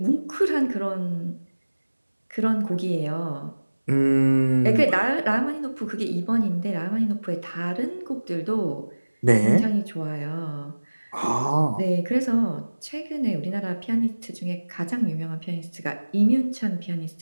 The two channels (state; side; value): inverted; both; correlation -1.00